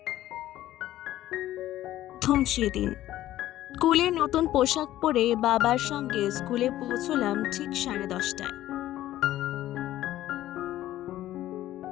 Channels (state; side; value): quieter; right; 14.1 dB